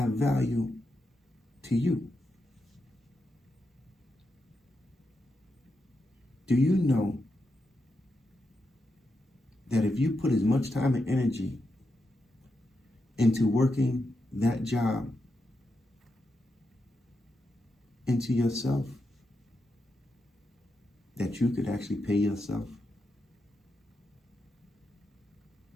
value to you. Do you know that if you put as much time and energy into working that job into yourself that you could actually pay yourself?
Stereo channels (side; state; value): both; normal; correlation 0.86